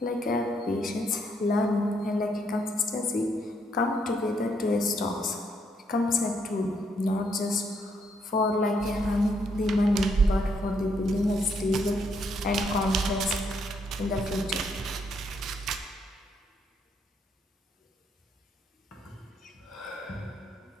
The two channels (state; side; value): normal; both; correlation 0.74